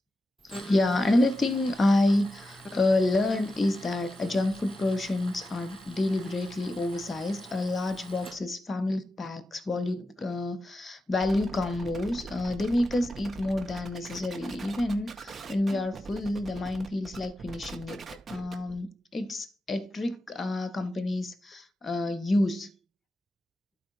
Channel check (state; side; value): normal; both; correlation 0.90